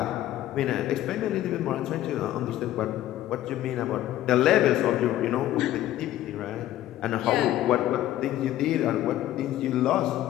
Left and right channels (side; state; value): right; quieter; 13.6 dB